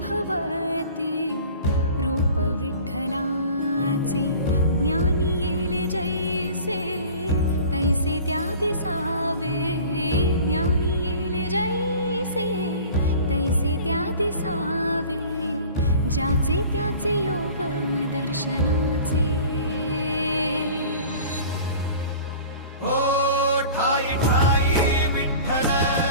रूप विठ्ठलाचे ज्ञानी येले जैसे तैसे त्या दिसावे ज्ञानी येले जैसे तैसे त्या दिसावे ज्याचे त्याचे योग दर्शनाचे ओ ठाई ठाई विठ्ठल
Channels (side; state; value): both; inverted; correlation -0.43